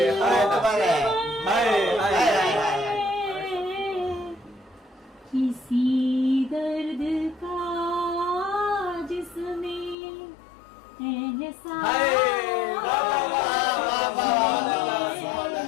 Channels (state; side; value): drops out; right; at 10.0 s